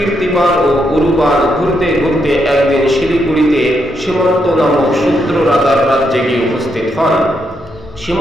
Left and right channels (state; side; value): normal; both; correlation 0.79